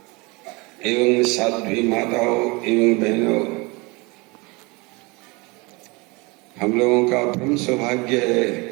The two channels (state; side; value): quieter; left; 26.4 dB